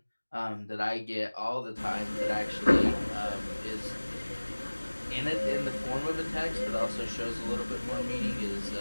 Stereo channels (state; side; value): inverted; both; correlation -1.00